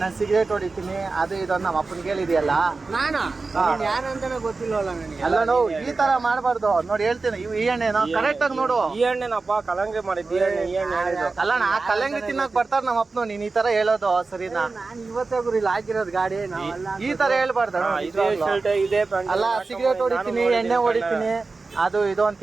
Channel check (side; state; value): left; quieter; 3.9 dB